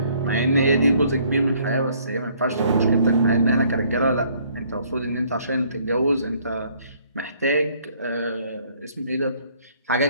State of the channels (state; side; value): inverted; both; correlation -0.63